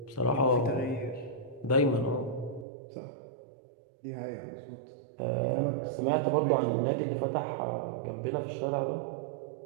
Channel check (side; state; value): left; drops out; at 2.7 s